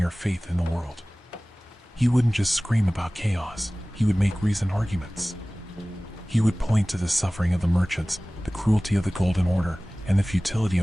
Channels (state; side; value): normal; both; correlation 0.98